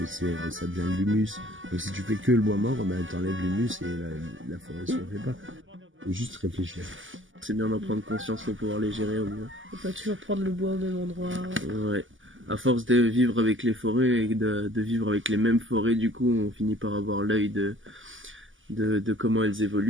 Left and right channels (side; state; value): left; late; 0.57 ms